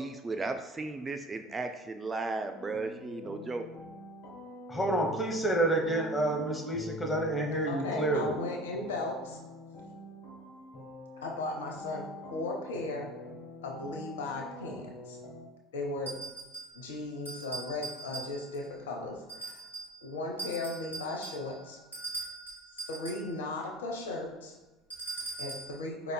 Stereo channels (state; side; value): normal; both; correlation 0.39